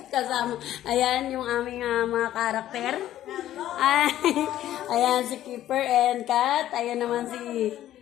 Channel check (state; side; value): quieter; right; 12.8 dB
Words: Kasama. Ayan, yung aming mga karakter. Ay, ayan, si Keeper and Kat. Ayan naman si